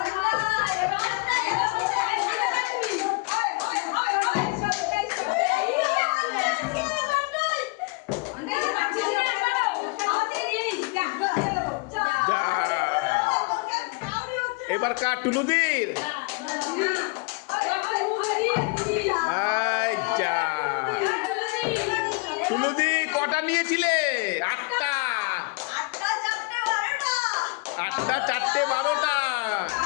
এবার কার? টুলুদির। আচ্ছা, টুলুদি কটা নিয়েছিলে? আটটা। আটটা, চারটে, 12টা।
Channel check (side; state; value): right; quieter; 28.5 dB